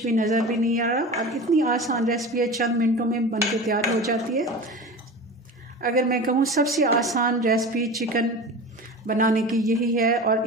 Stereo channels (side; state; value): both; normal; correlation 0.32